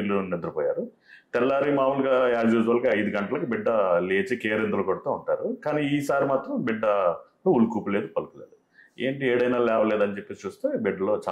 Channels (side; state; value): both; identical; correlation 1.00